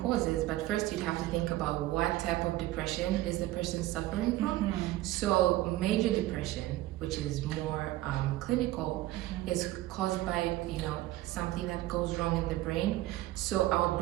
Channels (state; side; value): quieter; left; 16.3 dB